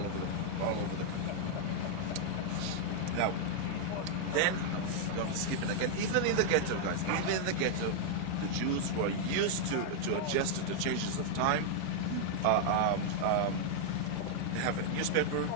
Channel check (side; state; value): both; different; correlation -0.01